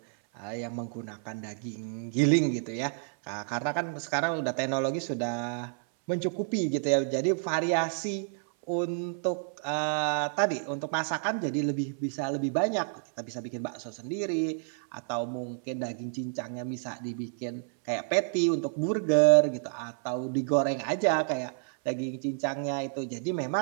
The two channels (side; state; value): left; silent; 57 dB below the other